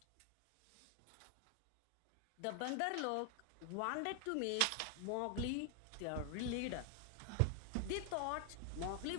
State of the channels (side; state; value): both; different; correlation 0.01